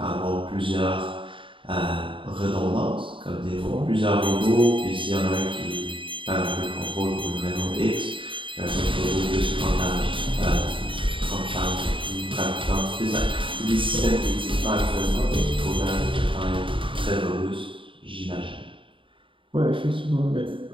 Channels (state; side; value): late; left; 0.25 ms